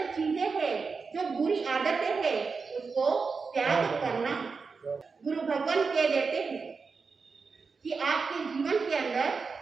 चीजें हैं, जो बुरी आदतें हैं, उसको त्याग करना। गुरु भगवान कह देते हैं कि आपके जीवन के अंदर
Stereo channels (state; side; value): quieter; left; 4.8 dB